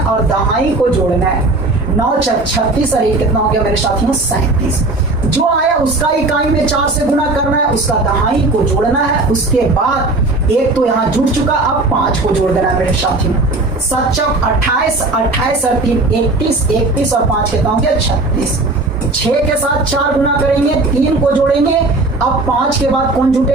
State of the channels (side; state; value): left; quieter; 3.1 dB